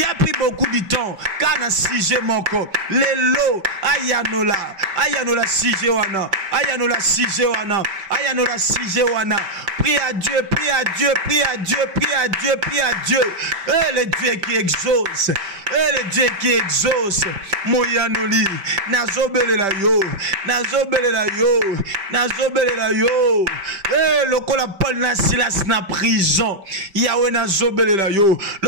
as pris beaucoup de temps. Kana sije moko. Lelo. Ayanola. Ayanola sije wana. Ayanola sije wana. Ayanola sije wana. Prie à Dieu. Prie à Dieu. Prie à Dieu. Prie à Dieu. Prie à Dieu. Le Dieu qui exauce. Le Dieu qui exauce. Moyanoli. Nazobele la yo. Nazobele la yo. Nazobele la yo. Lokola Paul na Silas na prison. Yahweh nazobele la yo.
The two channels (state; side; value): late; left; 5.1 ms